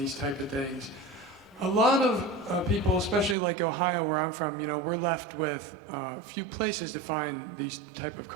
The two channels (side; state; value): left; drops out; at 3.4 s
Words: type of things, a lot of people, especially like Ohio where I'm from, we're left with a few places to find these type of